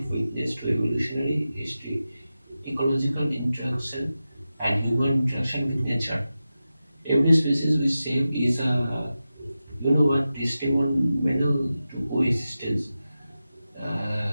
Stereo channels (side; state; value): both; inverted; correlation -0.93